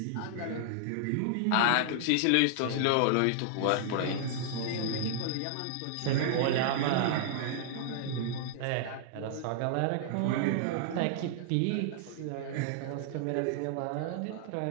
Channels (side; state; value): both; different; correlation -0.01